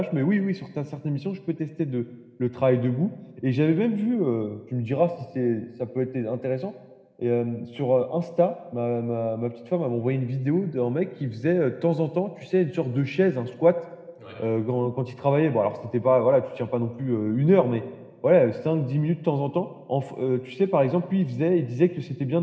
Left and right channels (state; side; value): identical; both; correlation 1.00